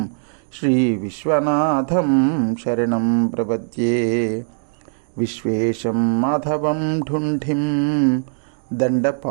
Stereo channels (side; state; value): left; silent; digital silence